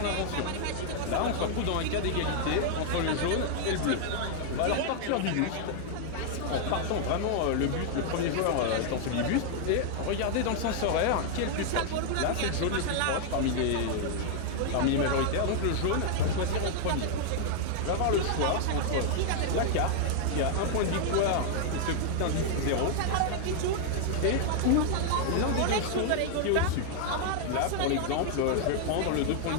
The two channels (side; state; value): both; different; correlation 0.00